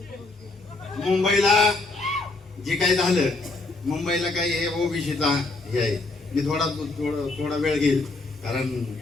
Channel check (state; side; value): quieter; right; 3.2 dB